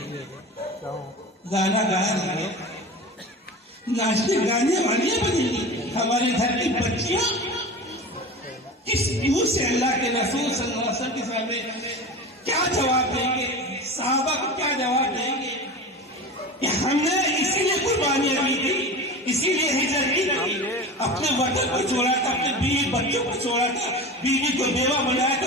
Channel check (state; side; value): normal; both; correlation 0.31